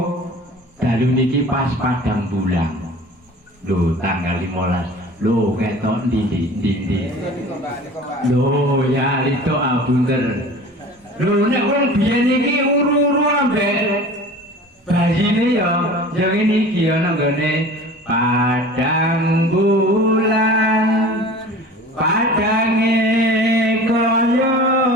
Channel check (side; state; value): both; normal; correlation 0.40